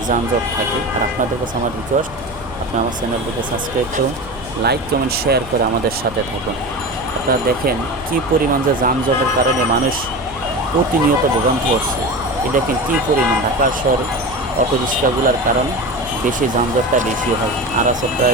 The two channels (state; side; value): noise; right; hum, 19 dB below the sound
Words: যানজট থাকে। আর আপনাদের কাছে আমার রিকোয়েস্ট, আপনি আমার চ্যানেলটিকে সাবস্ক্রাইব করুন, লাইক কমেন্ট শেয়ার করে আমাদের সাথে থাকুন। আপনারা দেখেন কী পরিমাণ যে যানজটের কারণে মানুষ প্রতিনিয়ত ভোগান্তি হচ্ছে। এই দেখেন কী পরিমাণ ঢাকা শহরে অটো রিক্সাগুলোর কারণে বেশি যানজটটা বেশি হয়। আর আছে